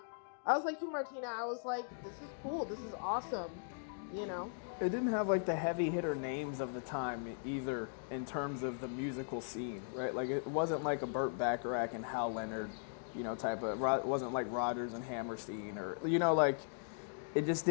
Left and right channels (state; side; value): silent; right; digital silence